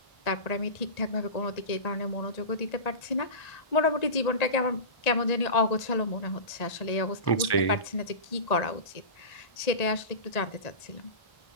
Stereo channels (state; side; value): late; right; 1.1 ms